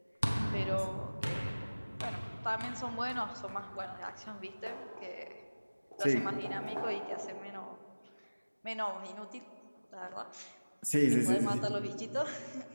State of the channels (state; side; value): inverted; both; correlation -1.00